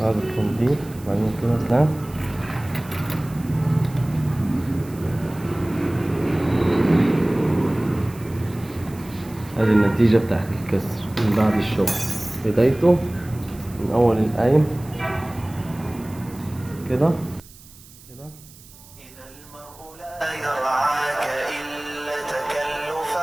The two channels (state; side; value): noise; right; hiss, 22 dB below the sound